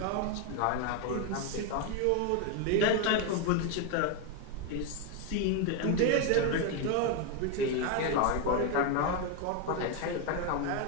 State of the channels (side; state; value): both; different; correlation 0.01